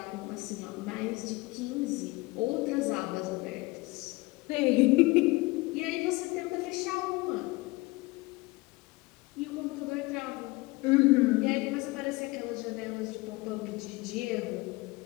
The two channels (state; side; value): quieter; right; 23.0 dB